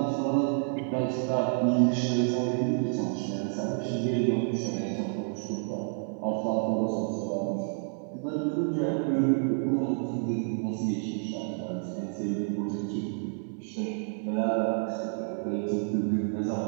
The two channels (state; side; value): silent; left; 58 dB below the other